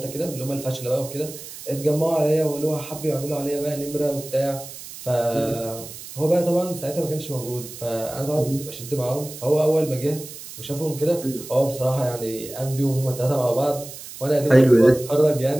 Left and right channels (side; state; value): right; noise; hiss, 13 dB below the sound